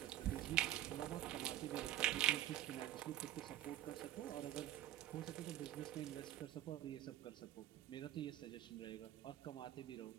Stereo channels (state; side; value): quieter; left; 13.3 dB